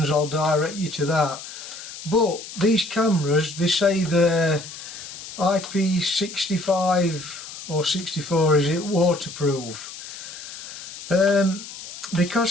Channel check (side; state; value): left; noise; hiss, 12 dB below the sound